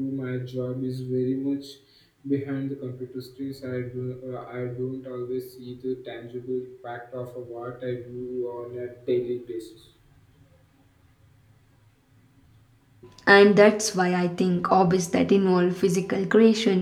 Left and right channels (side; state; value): both; identical; correlation 1.00